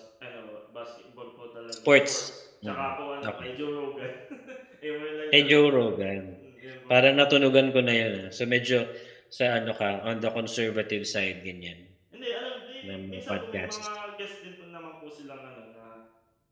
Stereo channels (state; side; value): identical; both; correlation 1.00